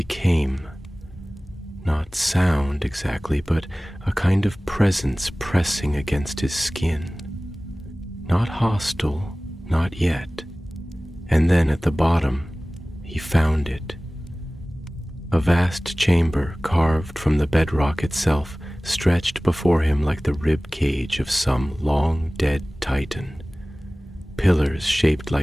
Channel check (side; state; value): both; normal; correlation 0.98